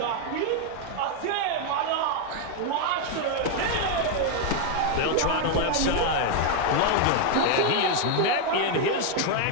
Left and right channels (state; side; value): different; both; correlation 0.01